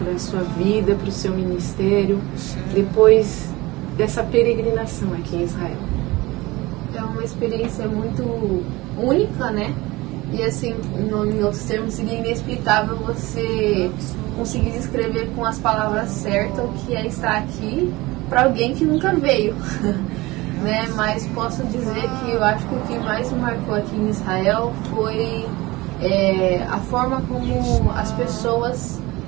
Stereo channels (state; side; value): quieter; left; 21.0 dB